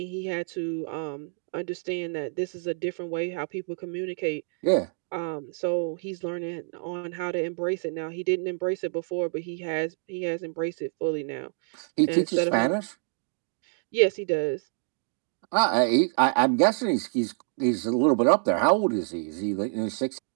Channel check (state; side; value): silent; left; 60 dB below the other